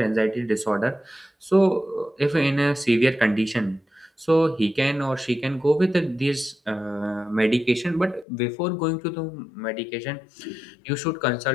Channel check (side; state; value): right; drops out; at 8.2 s